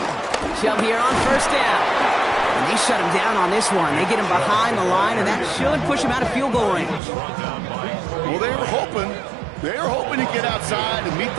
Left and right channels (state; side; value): drops out; left; at 7.0 s